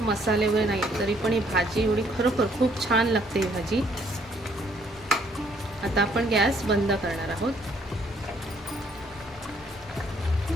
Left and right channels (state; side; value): normal; both; correlation 0.66